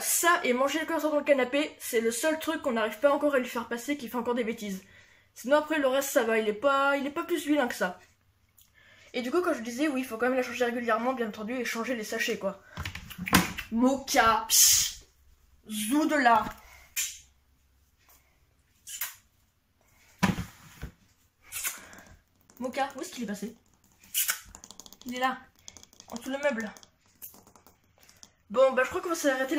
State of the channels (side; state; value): both; identical; correlation 1.00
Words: ça et manger le curseur dans le canapé, c'est le seul truc qu'on n'arrive pas encore à lui faire passer qui fait encore des bêtises. Sinon après, le reste, ça va, il est pas plus vilain que ça. Et du coup, quand je disais, oui, il faut quand même la changer régulièrement, bien entendu, et changer les sachets, quoi. Moka, psh, zou de là. Moka, où est-ce qu'il est passé? Il est là. en dessous le meuble. Bon, bah je crois qu'on va s'arrêter